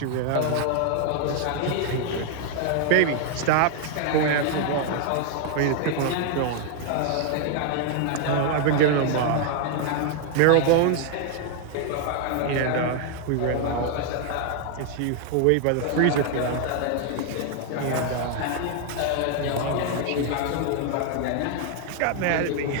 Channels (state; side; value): different; both; correlation 0.00